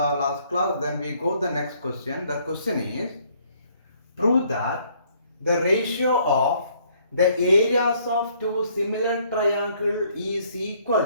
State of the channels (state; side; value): inverted; both; correlation -0.64